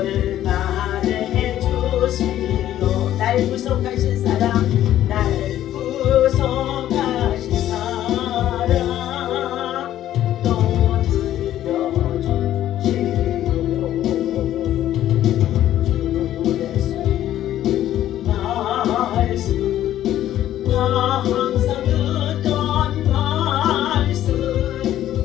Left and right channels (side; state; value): right; quieter; 12.4 dB